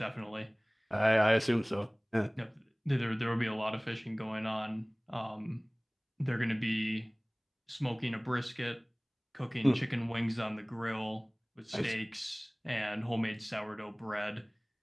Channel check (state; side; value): identical; both; correlation 1.00